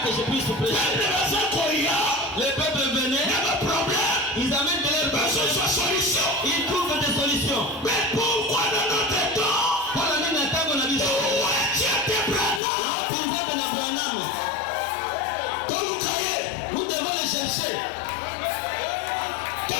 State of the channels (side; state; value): right; drops out; at 12.6 s